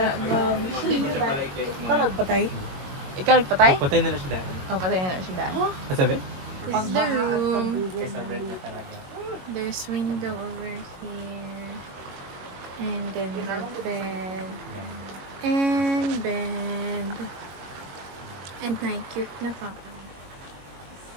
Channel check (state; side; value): late; left; 22 ms